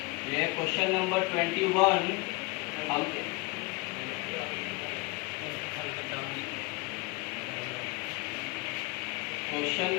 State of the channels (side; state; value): right; quieter; 25.3 dB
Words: ये क्वेश्चन नंबर 21 हम क्वेश्चन